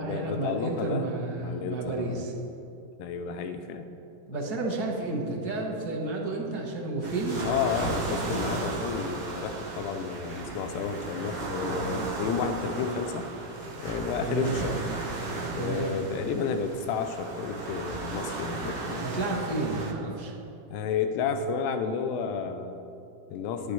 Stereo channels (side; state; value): right; late; 17 ms